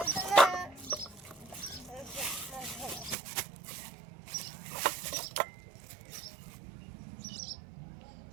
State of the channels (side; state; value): left; drops out; at 3.2 s